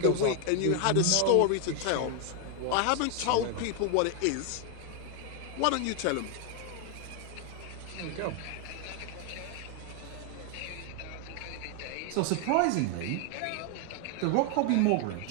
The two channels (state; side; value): different; both; correlation 0.00